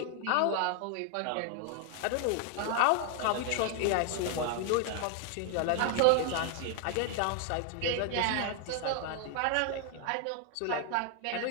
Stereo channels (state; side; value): different; both; correlation 0.00